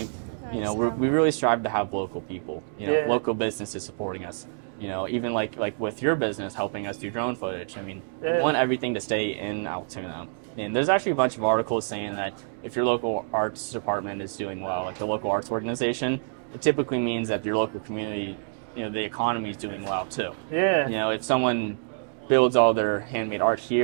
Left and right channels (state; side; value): silent; left; digital silence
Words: We really strive to have local people, local businesses supporting us. Even with your business helping us do drone footage. I mean, we want everything to stay in Altoona. And there's actually a bunch of articles saying that if your local arts department is doing well, the local arts organization, it typically means that your local community, the economy is doing well too. If someone builds all their handmade art